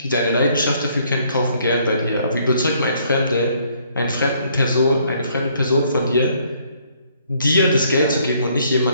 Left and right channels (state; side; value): inverted; both; correlation -0.66